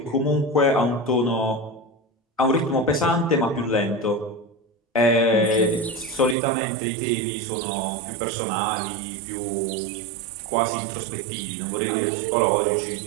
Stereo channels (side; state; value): left; drops out; at 6.4 s